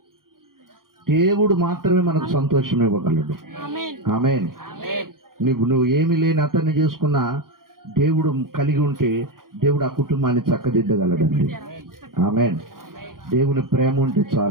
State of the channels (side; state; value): left; late; 0.91 ms